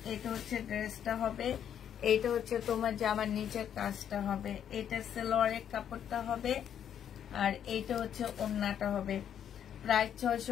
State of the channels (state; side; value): quieter; right; 9.2 dB